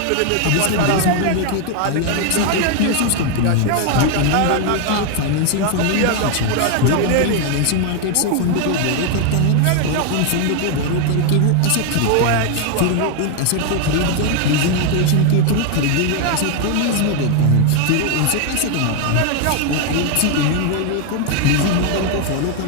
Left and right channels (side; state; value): both; different; correlation 0.01